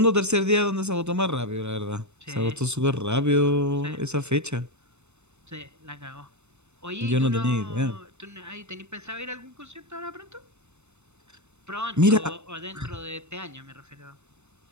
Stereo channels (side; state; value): left; late; 0.82 ms